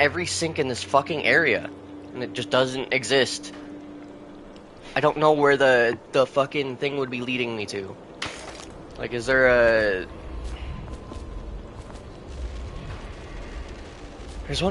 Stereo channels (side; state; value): both; identical; correlation 1.00